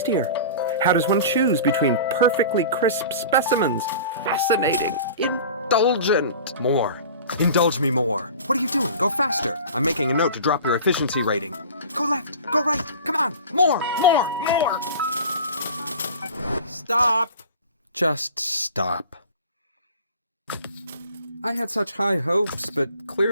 How does one choose between perfectly crisp specimens? Fascinating. Indulgent. More. Indulge me more. What are you doing? Go faster. I'm making a note to drop your efficiency rating. Go left. Go right. Come on. More. Stop. Just stop. I had such high hopes, but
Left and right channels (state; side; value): inverted; both; correlation -0.39